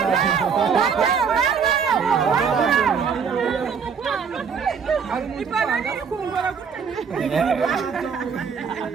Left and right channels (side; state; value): left; quieter; 6.4 dB